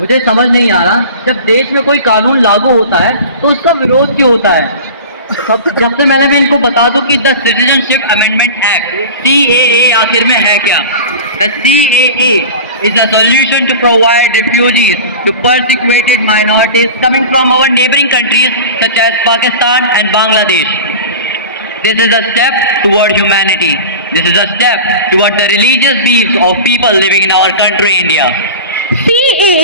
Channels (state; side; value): inverted; both; correlation -0.34